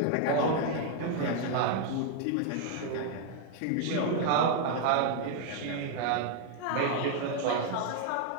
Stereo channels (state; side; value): different; both; correlation 0.00